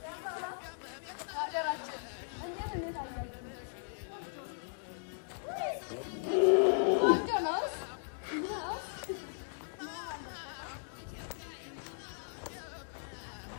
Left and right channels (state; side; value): silent; right; digital silence